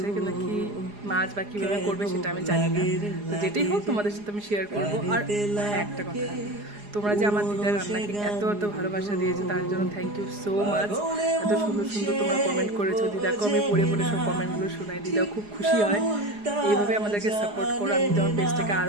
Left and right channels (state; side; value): late; left; 4.8 ms